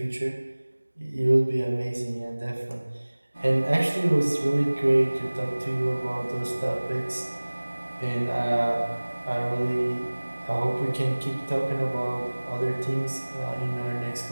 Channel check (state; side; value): inverted; both; correlation -1.00